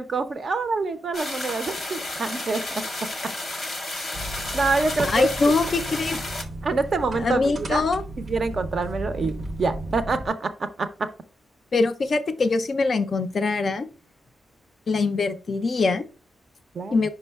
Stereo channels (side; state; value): both; normal; correlation 0.84